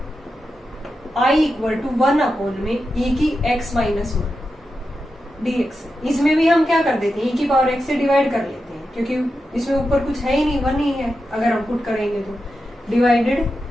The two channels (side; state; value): both; normal; correlation 0.89